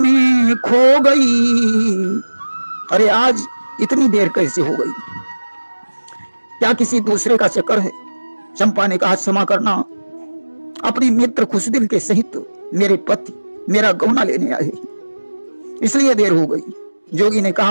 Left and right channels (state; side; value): inverted; both; correlation -1.00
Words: खो गई? अरे आज इतनी देर कैसे हो गई? क्या किसी दूसरे का चक्कर है? चंपा ने कहा, क्षमा करना, अपने मित्र खुशदिल के सहित मेरे पति मेरा गौना लेने आए, इसलिए देर हो गई। जोगी ने